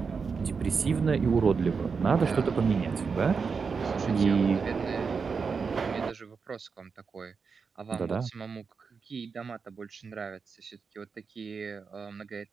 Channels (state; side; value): quieter; left; 5.4 dB